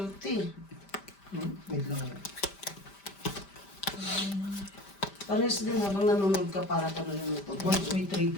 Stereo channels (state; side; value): late; right; 5.1 ms